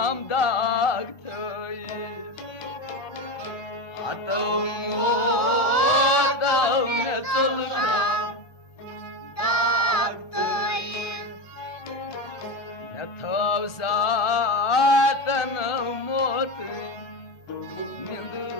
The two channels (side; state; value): right; late; 1.2 ms